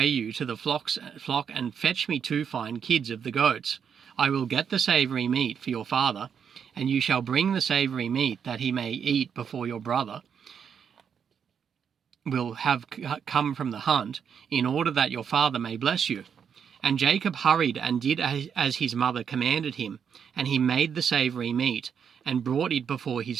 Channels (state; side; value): quieter; left; 7.4 dB